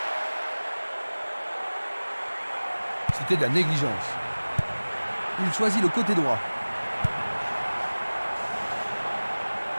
C'était de la négligence. Il choisit le côté droit.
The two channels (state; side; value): inverted; both; correlation -1.00